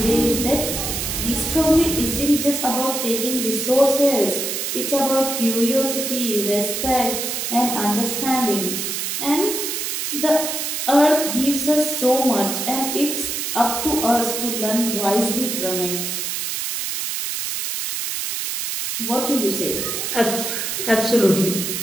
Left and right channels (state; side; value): noise; right; hiss, 3 dB below the sound